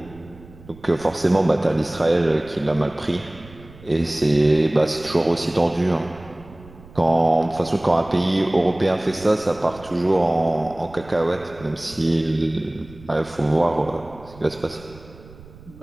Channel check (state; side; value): noise; right; rumble, 21 dB below the sound